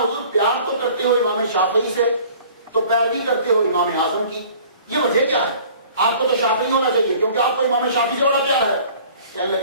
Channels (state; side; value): inverted; both; correlation -0.50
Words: پیار تو کرتے ہو امام شافعی سے تو پیروی کرتے ہو امام اعظم کی یہ وجہ کیا ہے؟ آپ کو تو شافعی ہونا چاہیے کیونکہ آپ کو امام شافعی سے بڑا پیار ہے. کہنے